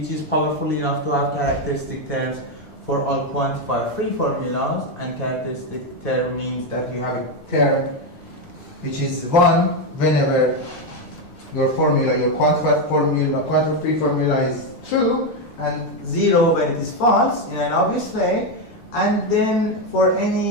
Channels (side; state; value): right; late; 6.7 ms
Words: is powerful enough to have characteristic terms for all quantifier free formulas, and characteristic term means that you have a term which is 1 whenever your formula, your quantified formula, quantifier free formula is true, and 0 when it is false in an obvious way. And then for